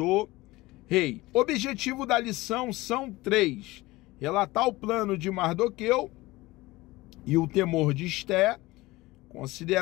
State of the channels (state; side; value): quieter; right; 20.0 dB